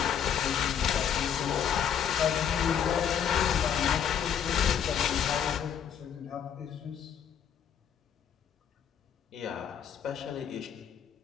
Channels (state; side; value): quieter; right; 8.4 dB